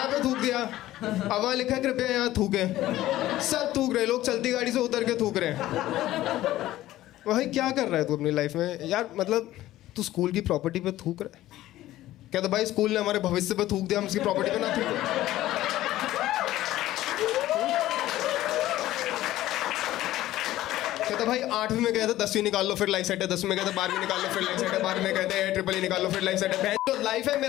पे थूक दिया। अब वहाँ लिखा है कृपया यहाँ थूके। सब थूक रहे, लोग चलती गाड़ी से उतर के थूक रहे हैं। भाई क्या कर रहा है तू अपनी लाइफ में यार? मतलब तू स्कूल की प्रॉपर्टी पे थूक रहा है। कहता भाई स्कूल ने हमारे भविष्य पे थूक दिया, हम उसकी प्रॉपर्टी पे ना थूके। कहता भाई 8वीं में गए थे, 10वीं निकाल लो फिर लाइफ सेट है। 10वीं में गए थे, 12वीं निकाल लो फिर लाइफ सेट है। 12वीं में कहते हैं ट्रिपल निकाल लो फिर लाइफ सेट है। तो लाइफ है,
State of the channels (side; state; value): right; quieter; 15.0 dB